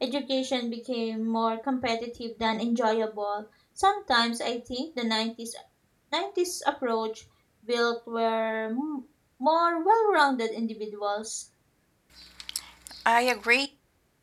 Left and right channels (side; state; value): both; identical; correlation 1.00